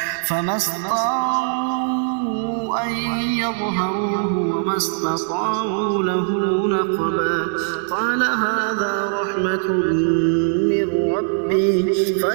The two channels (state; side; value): silent; left; digital silence